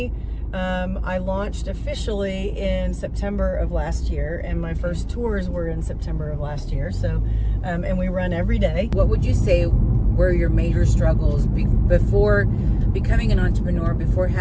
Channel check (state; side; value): identical; both; correlation 1.00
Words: I launched officially in September of last year, and my first tours were in September of last year. So, and we run every day. What would you say were your major struggles before becoming an entrepreneur, before